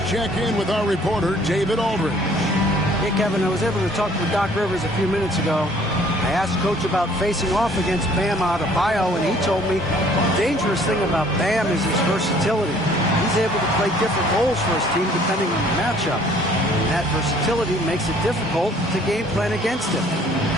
check in with our reporter, David Aldridge. Hey, Kevin, I was able to talk with Doc Rivers a few minutes ago. I asked Coach about facing off against Bam Adebayo, and he told me the dangerous thing about Bam is his versatility. He's able to play different roles for his team depending on the matchup. And that versatility makes it difficult to game plan against him.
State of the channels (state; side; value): normal; both; correlation 0.57